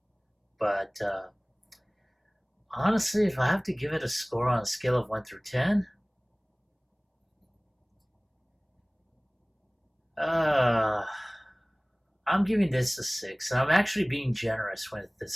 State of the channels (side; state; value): both; identical; correlation 1.00